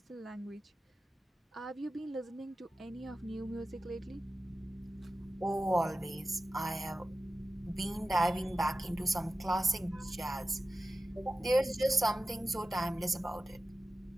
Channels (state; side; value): normal; both; correlation 0.94